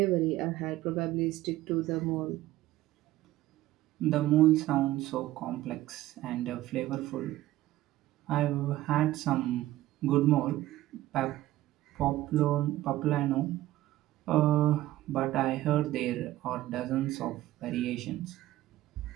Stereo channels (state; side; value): quieter; left; 15.4 dB